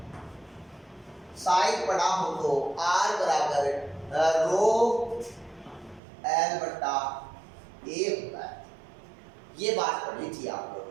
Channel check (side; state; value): left; drops out; at 6.0 s